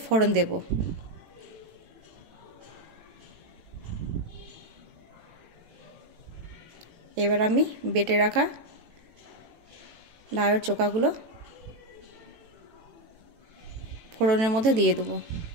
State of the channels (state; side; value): late; left; 18 ms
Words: ফোড়ন দেব। এবার আমি বেটে রাখা লাউয়ের চোকাগুলো ফোড়নের মধ্যে দিয়ে দেবো।